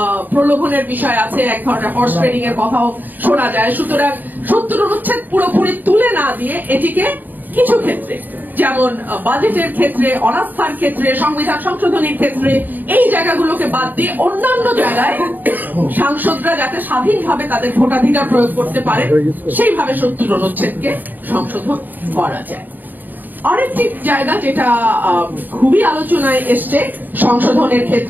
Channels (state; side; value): late; left; 0.087 ms